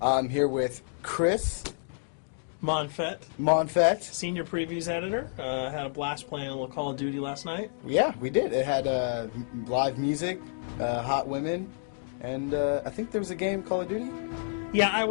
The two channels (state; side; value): silent; right; digital silence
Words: here with Chris Monfett, Senior Previews Editor. Had a blast playing a little Call of Duty last night. Yeah, we did. It had live music, hot women, and I think there was a game, Call of Duty? Yeah, I